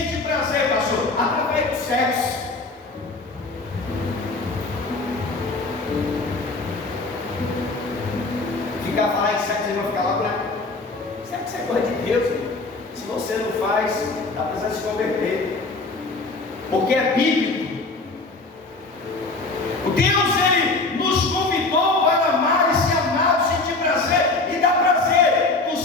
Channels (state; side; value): quieter; right; 3.4 dB